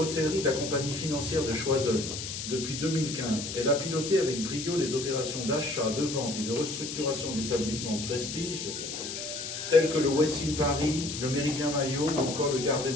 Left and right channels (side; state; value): left; noise; hiss, 6 dB below the sound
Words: de la compagnie financière de Choiseul, depuis 2015, elle a piloté avec brio les opérations d'achat, de vente et de restructuration d'établissements de prestige, tels que le Westin Paris, le Méridien Maillot ou encore le Garden